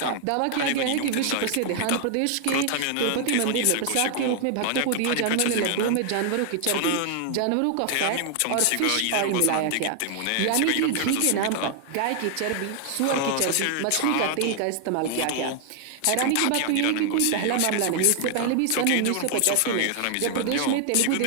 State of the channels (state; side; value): different; both; correlation 0.00